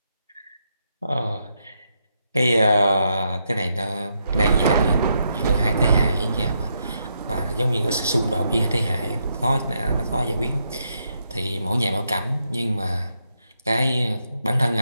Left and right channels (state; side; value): inverted; both; correlation -0.80